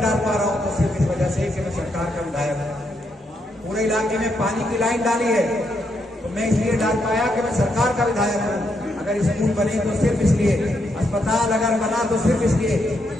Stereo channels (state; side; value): normal; both; correlation 0.79